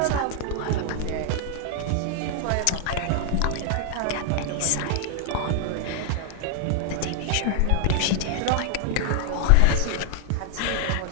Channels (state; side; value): different; both; correlation 0.00